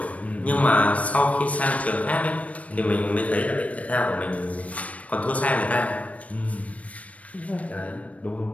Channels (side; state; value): right; late; 0.067 ms